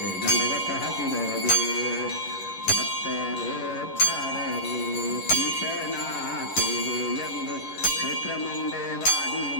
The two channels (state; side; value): late; right; 11 ms